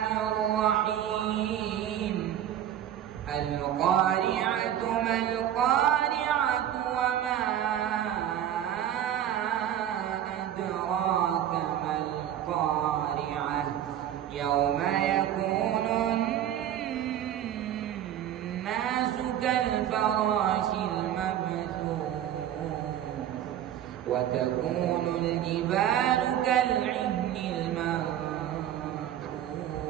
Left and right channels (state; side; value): quieter; left; 11.0 dB